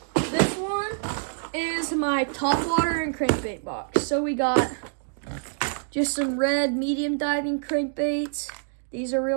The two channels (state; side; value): silent; left; digital silence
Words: This one is my top water and crankbait box. So we got just some red medium diving crankbaits. These are